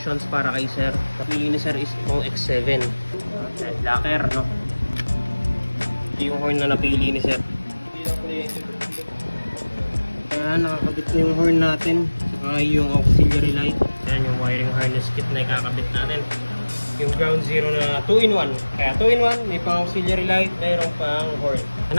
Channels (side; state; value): both; inverted; correlation -1.00